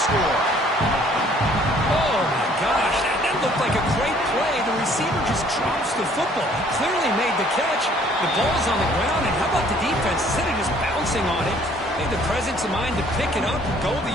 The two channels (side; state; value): both; normal; correlation 0.59